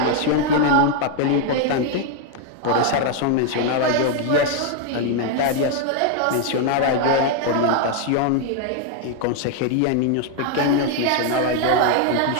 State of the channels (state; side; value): different; both; correlation 0.00